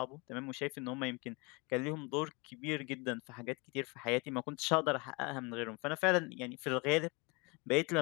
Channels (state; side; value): quieter; right; 28.8 dB